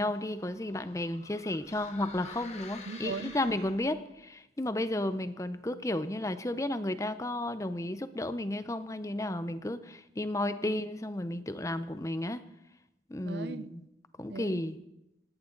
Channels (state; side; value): normal; both; correlation 0.71